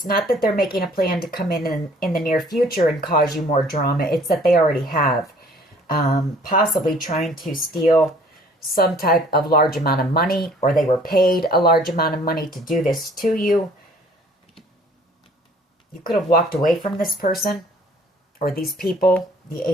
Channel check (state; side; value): normal; both; correlation 0.55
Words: not that they're making a plan to come in the near future and cause you more drama, it's that they already have. Possibly trying to steal some type of large amount of money, or they were paid a large amount of money to do this to you. You could have walked away from this person or these people. The